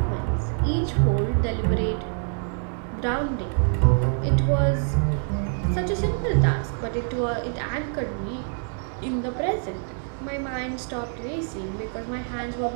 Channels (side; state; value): left; silent; 58 dB below the other